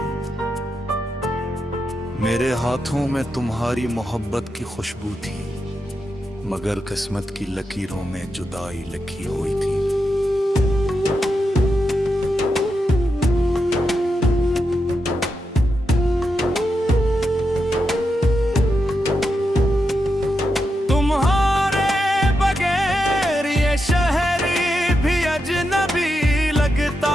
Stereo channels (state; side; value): normal; both; correlation 0.86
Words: मेरे हाथों में तुम्हारी मोहब्बत की खुशबू थी, मगर किस्मत की लकीरों में जुदाई लिखी हुई थी। तुम्हारे बगैर ये शहर भी अजनबी लगता